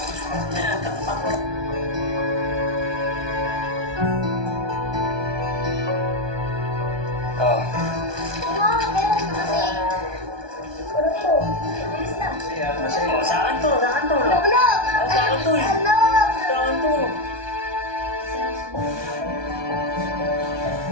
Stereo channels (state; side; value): late; left; 1.2 ms